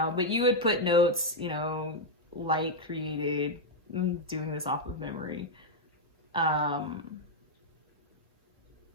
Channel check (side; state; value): both; normal; correlation 0.00